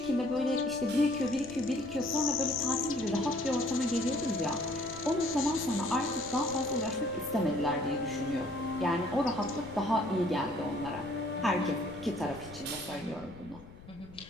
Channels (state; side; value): noise; left; rumble, 19 dB below the sound